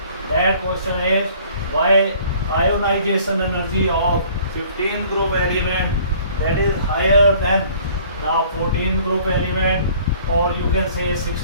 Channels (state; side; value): inverted; both; correlation -0.54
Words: That question is why ionization energy of 15th group element that is higher than the 14th group element, or you can say